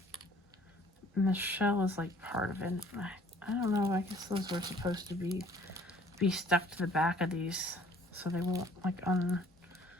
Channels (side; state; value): both; normal; correlation 0.56